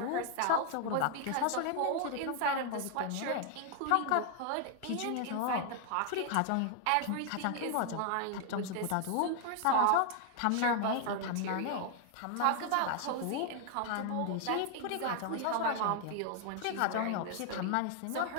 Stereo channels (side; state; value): both; different; correlation 0.00